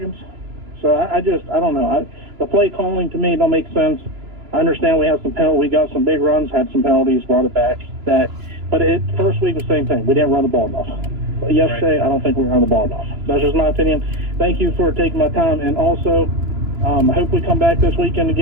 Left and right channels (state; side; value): late; left; 2.9 ms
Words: So I don't know. The play calling to me don't make sense. I understand we have some penalties. We got some big runs, had some penalties, brought it back. But first week was the same thing. We didn't run the ball enough. But yesterday, right. I don't think we ran the ball enough. That's just my opinion. Thank you for taking my time. And also, I hope we come back this weekend